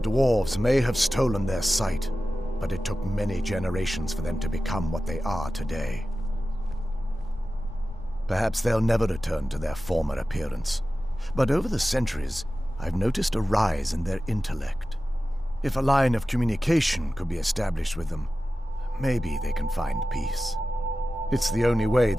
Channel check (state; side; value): normal; both; correlation 0.95